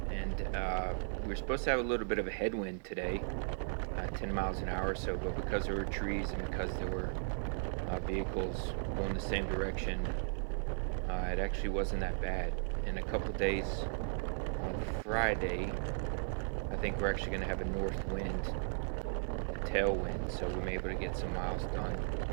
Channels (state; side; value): silent; left; 53 dB below the other